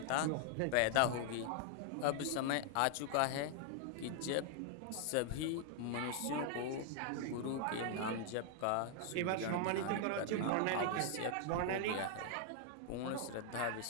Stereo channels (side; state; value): both; different; correlation 0.00